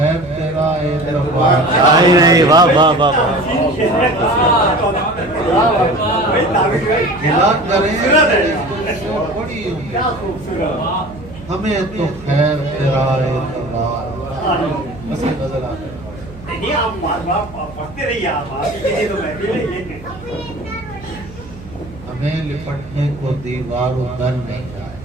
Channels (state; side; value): noise; right; hum, 17 dB below the sound